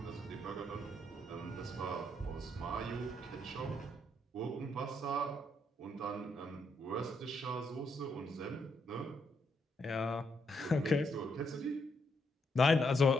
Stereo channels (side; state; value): both; normal; correlation 0.77